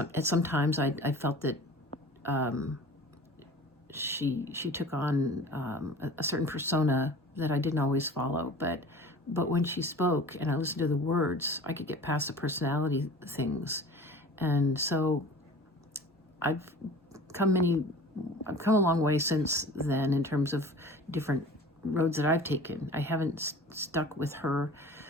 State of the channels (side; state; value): both; normal; correlation 0.42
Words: times I felt that she took on a certain persona that I didn't always follow, but when she spoke and I listened to the words, I could get past the personality things. And so I've come a long way since then in terms of different roads that I've taken. I haven't stuck with her